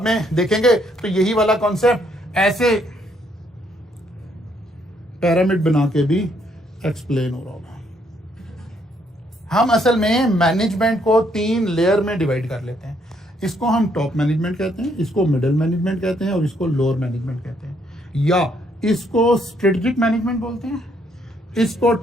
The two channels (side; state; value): both; normal; correlation 0.71